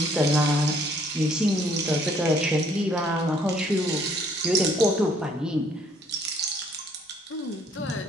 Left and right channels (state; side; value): normal; both; correlation 0.63